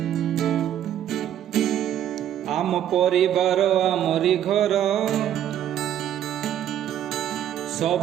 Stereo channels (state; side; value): quieter; left; 10.8 dB